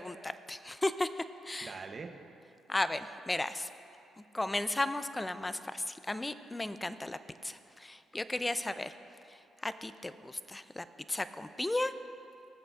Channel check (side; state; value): both; normal; correlation 0.98